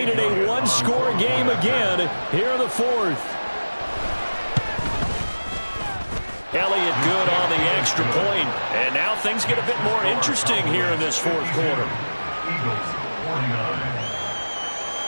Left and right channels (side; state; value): both; inverted; correlation -1.00